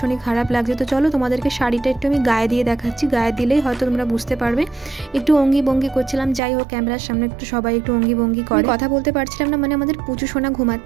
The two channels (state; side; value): drops out; left; at 6.4 s